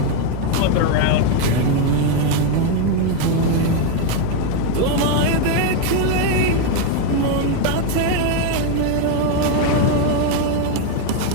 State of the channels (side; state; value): both; different; correlation 0.01